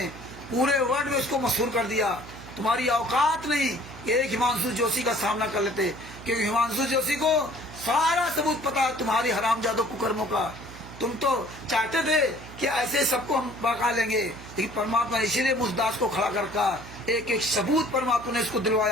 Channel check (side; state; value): right; noise; hum, 16 dB below the sound